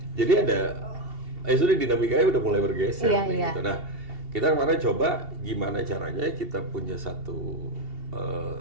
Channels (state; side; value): late; left; 2.7 ms